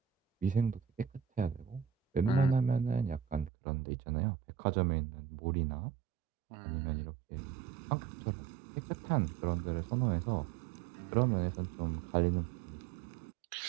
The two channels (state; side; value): drops out; left; at 3.5 s